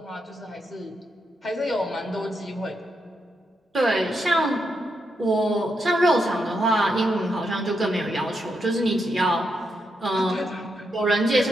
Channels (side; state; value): both; normal; correlation 0.82